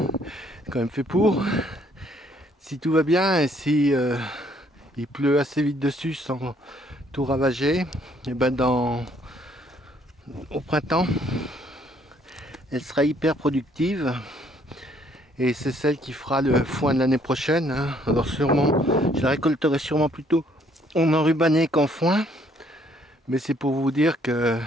c'est quand même fait pour. Si tout va bien et si il pleut assez vite dessus sans tout ravager, et au printemps, elle sera hyper productive. Et c'est celle qui fera le foin de l'année prochaine, hein. Alors sûrement, je la récolterai sûrement plutôt en enrubanné qu'en foin. Mais c'est pour vous dire que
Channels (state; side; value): normal; both; correlation 0.65